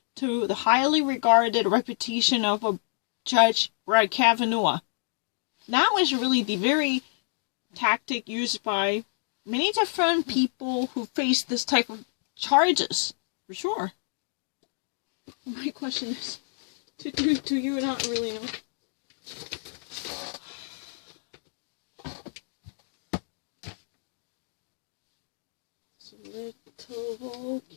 to the highly regarded reputation of a Judge Brett Kavanaugh. That was really the very tactic used by many different people who face this type of charges, for sure. My question is, do you not really know? It's a little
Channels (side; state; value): right; silent; digital silence